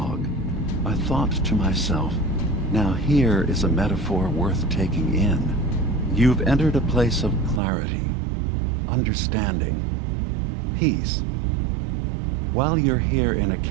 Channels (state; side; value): drops out; left; at 7.6 s